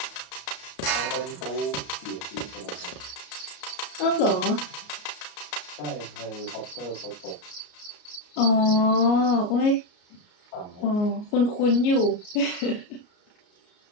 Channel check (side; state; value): right; late; 33 ms